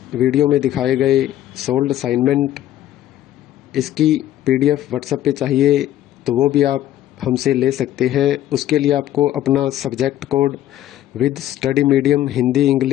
वीडियो में दिखाए गए सोल्ड असाइनमेंट इसकी PDF व्हाट्सएप पे चाहिए, तो वो भी आप हमसे ले सकते हैं। उसके लिए आपको अपना subject code with study medium, Hindi,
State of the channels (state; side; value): quieter; right; 12.8 dB